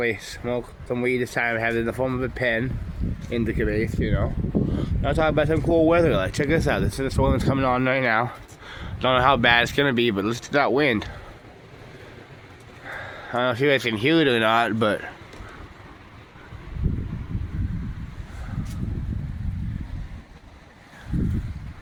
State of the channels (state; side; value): identical; both; correlation 1.00